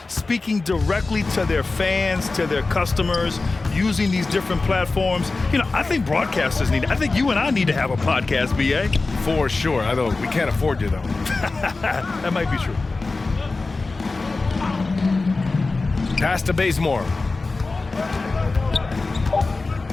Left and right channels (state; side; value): quieter; right; 3.6 dB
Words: Speaking directly to their fans, to their customers, using these different platforms. You know, I think broadcasters need it. I think you and I need to have a podcast, BA. For sure. I know we can't afford you, though. That might be true. Pass to Bazemore.